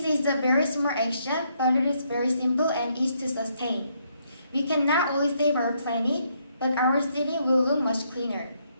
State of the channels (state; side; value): inverted; both; correlation -0.73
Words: is a very small action, but it is very simple and easy to sustain. We can not only save our planet, but our city will look much cleaner.